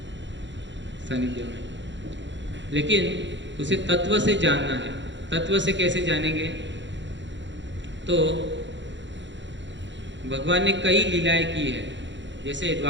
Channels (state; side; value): late; left; 0.53 ms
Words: सानिध्य में। लेकिन उसे तत्व से जानना है। तत्व से कैसे जानेंगे? तो भगवान ने कई लीलाएं की है। जैसे